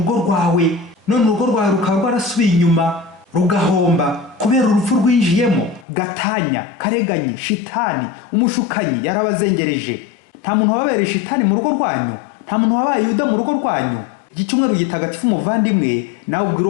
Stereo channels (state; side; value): drops out; right; at 5.9 s